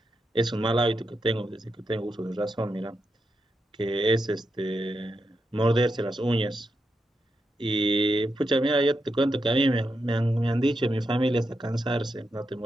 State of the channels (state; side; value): normal; both; correlation 0.85